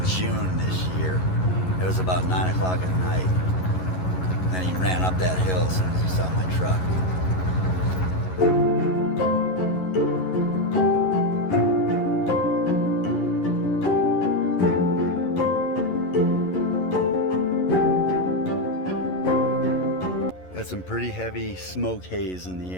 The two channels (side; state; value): right; late; 11 ms